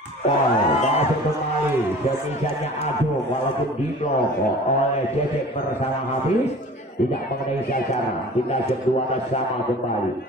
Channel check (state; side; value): normal; both; correlation 0.43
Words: Masuk kembali semisalnya Agung walaupun di blok oleh Cecep bersama Hafiz tidak mengenai sasaran. Kita kedua sama kembali